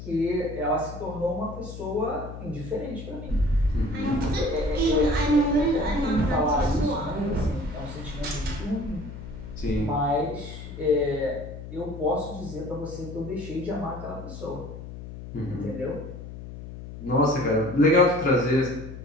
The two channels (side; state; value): left; noise; hum, 11 dB below the sound